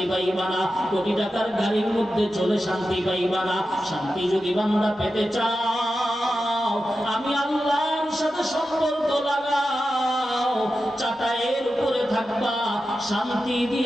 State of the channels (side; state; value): both; normal; correlation 0.91